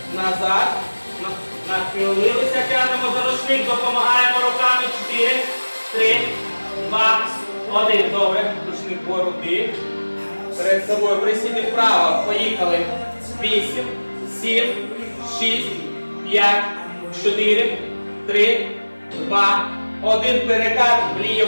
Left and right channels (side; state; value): both; inverted; correlation -1.00